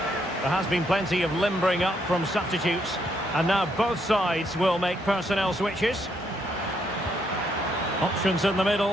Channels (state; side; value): normal; both; correlation 0.74